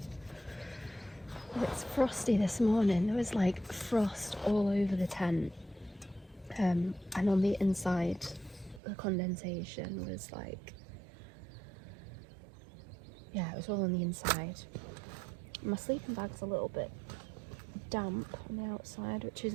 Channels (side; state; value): left; drops out; at 8.8 s